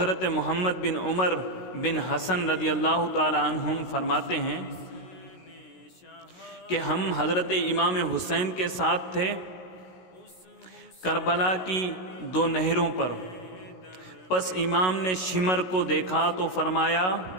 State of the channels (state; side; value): late; right; 16 ms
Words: محمد بن عمر بن حسن رضی اللہ تعالی عنہم فرماتے ہیں کہ ہم حضرت امام حسین کے ساتھ تھے کربلا کی 2 نہروں پر۔ پس امام نے شمر کو دیکھا تو فرمایا